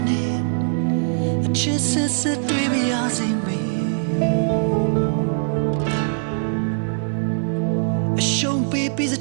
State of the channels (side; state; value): left; silent; digital silence